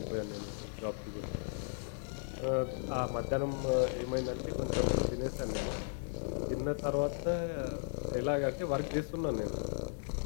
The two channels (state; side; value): silent; right; digital silence